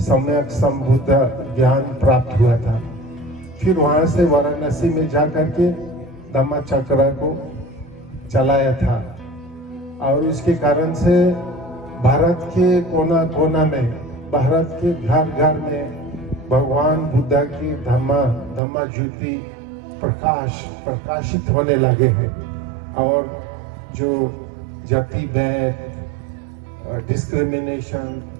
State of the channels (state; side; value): drops out; left; at 18.6 s